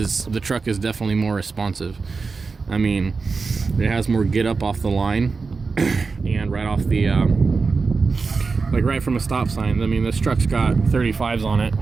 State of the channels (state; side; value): quieter; left; 4.5 dB